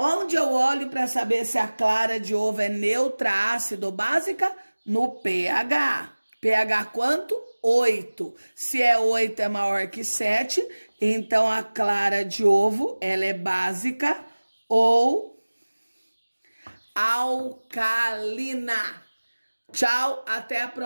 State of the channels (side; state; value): both; inverted; correlation -1.00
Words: eu olho para saber se a clara de ovo é neutra, ácido ou básica? No pH. pH quanto? 8. Se é 8 é maior que 7, então a clara de ovo ela é básica ou alcalina. Tchau, até a